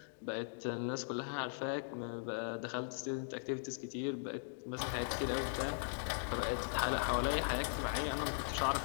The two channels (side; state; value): right; silent; digital silence